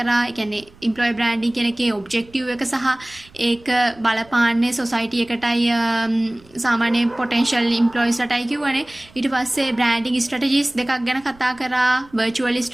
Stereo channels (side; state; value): right; noise; rumble, 26 dB below the sound